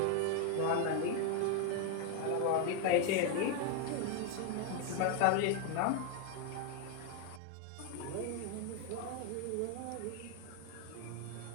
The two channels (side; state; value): both; different; correlation 0.01